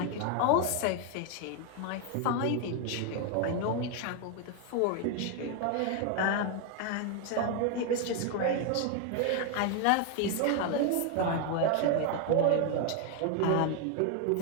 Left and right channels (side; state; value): both; different; correlation 0.01